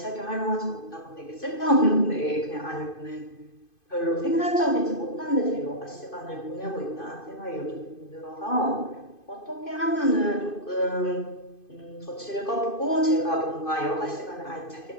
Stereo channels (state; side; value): late; right; 2.5 ms